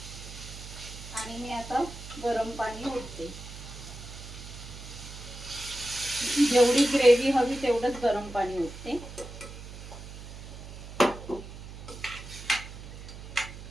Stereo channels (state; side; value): noise; right; hum, 12 dB below the sound